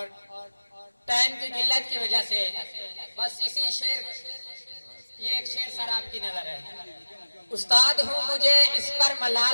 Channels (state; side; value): inverted; both; correlation -1.00